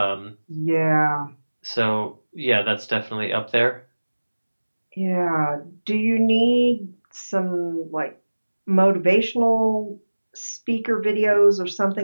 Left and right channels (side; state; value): both; inverted; correlation -1.00